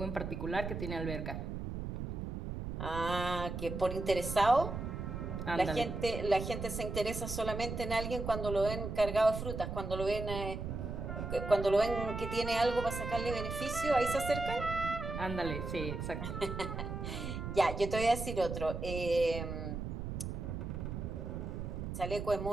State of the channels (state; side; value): noise; right; rumble, 5 dB below the sound